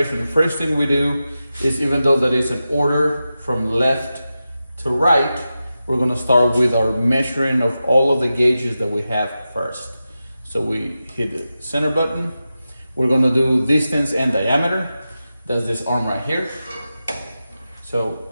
The first thing we do is, even though that is an order from left to right, we're going to start with our measuring of all of the gauges that we have first. So we hit the center button. We're going to do distance and diameter. That's this arm right here. So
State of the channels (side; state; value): both; inverted; correlation -0.92